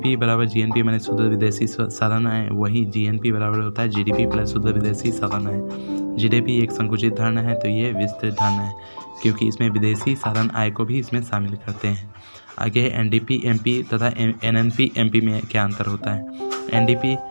बराबर जीएनपी माने शुद्ध विदेशी साधन आय, वही जीएनपी बराबर होता है जीडीपी प्लस शुद्ध विदेशी साधन आय। जीडीपी एक संकुचित धारणा है तो ये विस्तृत धारणा है क्योंकि इसमें विदेशी साधन आय को भी इसमें शामिल करते हैं। आगे है एनडीपीएमपी तथा एनएनपीएमपी में क्या अंतर होता है।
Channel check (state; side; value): inverted; both; correlation -1.00